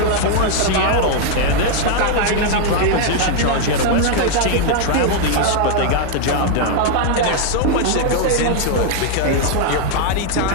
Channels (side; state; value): both; different; correlation 0.00